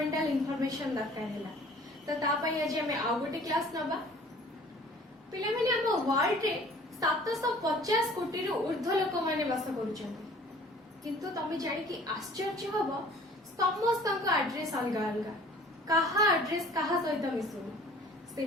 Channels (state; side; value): normal; both; correlation 0.50